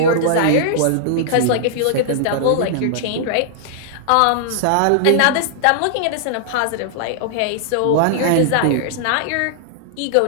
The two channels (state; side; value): different; both; correlation -0.01